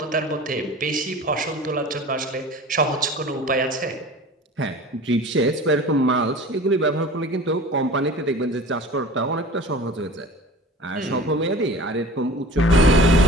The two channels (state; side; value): normal; both; correlation 0.40